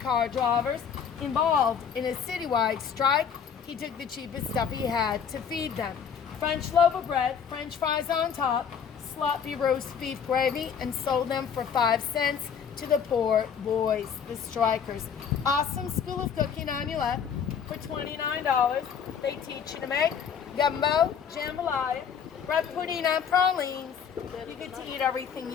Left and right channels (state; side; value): quieter; right; 7.3 dB